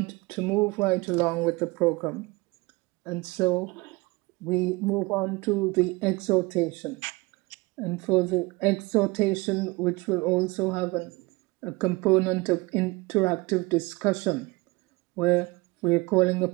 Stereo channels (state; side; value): quieter; left; 24.1 dB